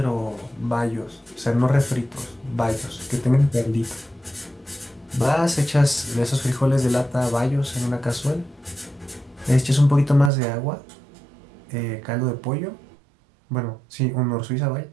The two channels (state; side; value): drops out; left; at 10.3 s